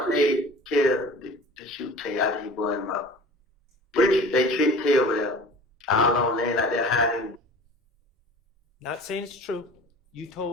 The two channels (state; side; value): normal; both; correlation 0.42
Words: paid Kel to shoot Tay after he burned him up. They tricked Tay over there. All on land like that hiding. Not saying it's true. You